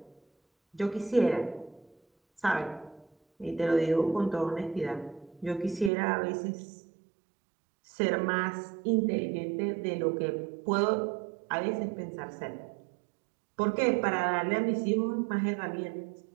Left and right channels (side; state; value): left; drops out; at 5.9 s